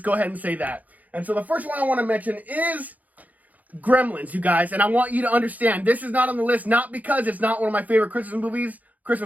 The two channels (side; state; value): left; late; 0.078 ms